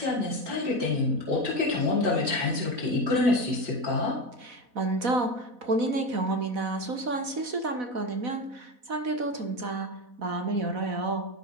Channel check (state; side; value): late; left; 4.1 ms